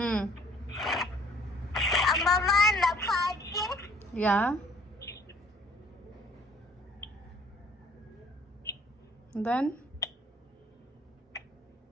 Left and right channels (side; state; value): both; normal; correlation 0.58